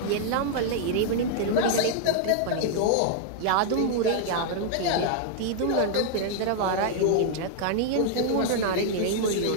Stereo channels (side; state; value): both; different; correlation 0.00